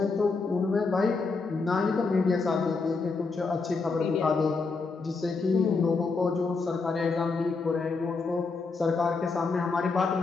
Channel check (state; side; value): quieter; right; 4.2 dB